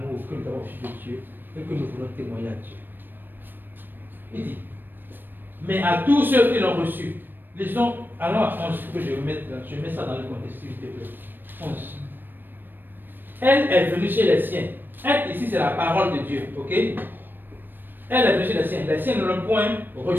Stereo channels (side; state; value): left; late; 0.094 ms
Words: que nous avons reçu de Dieu et que nous voulons témoigner à Dieu. Il dit, mais à tous ceux qui l'ont reçu, lisons, allons à 11, que je mets ça dans le contexte, s'il te plaît. 11. Elle est venue chez les siens. Elle, ici, c'est la parole de Dieu, ok? Elle est venue chez les siens. Les siens ne l'ont point